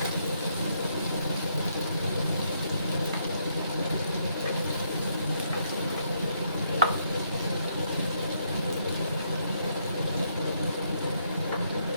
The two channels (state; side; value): inverted; both; correlation -0.74